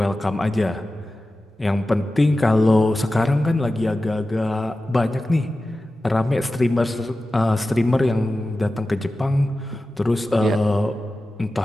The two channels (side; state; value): both; normal; correlation 0.94